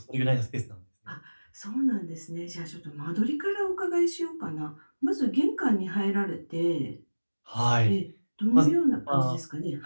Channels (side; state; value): both; inverted; correlation -1.00